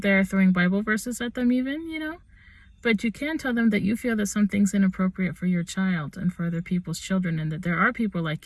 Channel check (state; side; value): identical; both; correlation 1.00